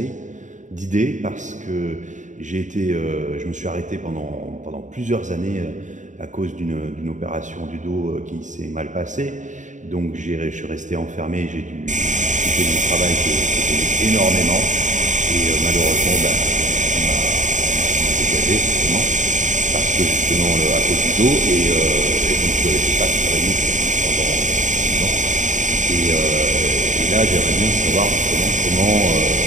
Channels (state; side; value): late; left; 0.36 ms